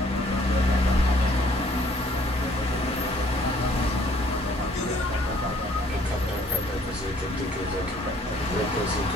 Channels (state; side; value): normal; both; correlation 0.60